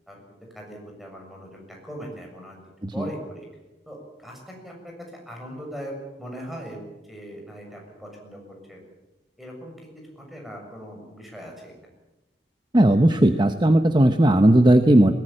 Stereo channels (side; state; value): both; normal; correlation 0.90